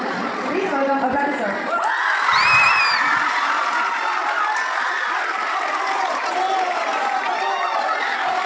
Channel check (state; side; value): identical; both; correlation 1.00